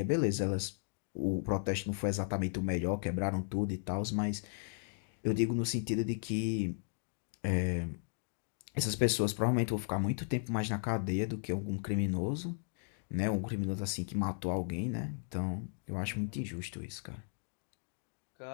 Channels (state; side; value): silent; right; digital silence